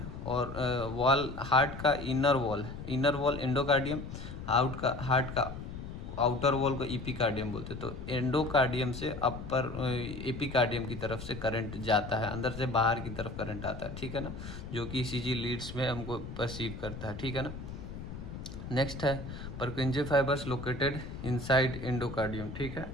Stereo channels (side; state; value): left; noise; rumble, 9 dB below the sound